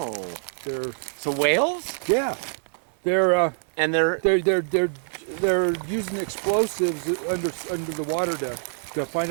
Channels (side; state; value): left; silent; 61 dB below the other